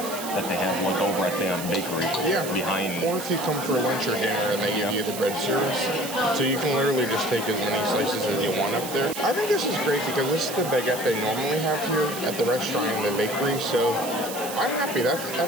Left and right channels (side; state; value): right; noise; hiss, 9 dB below the sound